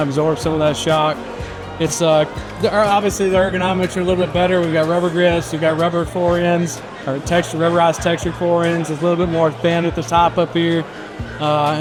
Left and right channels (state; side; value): identical; both; correlation 1.00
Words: absorb some of that shock. It's obviously the ergonomics are a little bit better. We've got rubber grips, we've got rubber forends, or rubberized textured forends. It's a little bit more thin at the top up here.